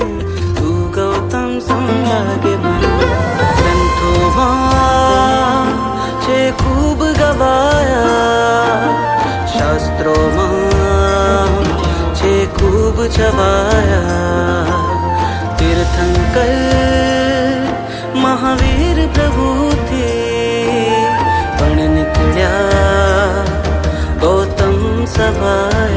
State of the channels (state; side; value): identical; both; correlation 1.00